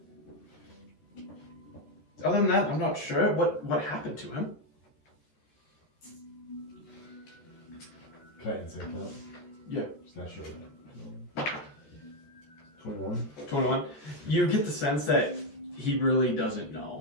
Other than that, I'm not sure what happened to him. Can I insight that? Yeah. Just not sure. 21. 21. You get the sense that he really doesn't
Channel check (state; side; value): late; right; 13 ms